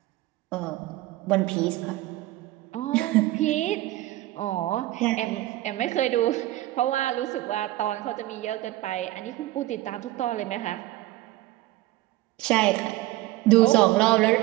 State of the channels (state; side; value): quieter; left; 17.1 dB